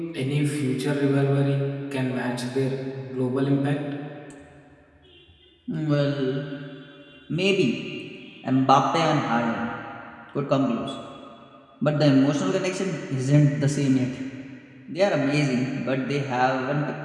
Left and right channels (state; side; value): identical; both; correlation 1.00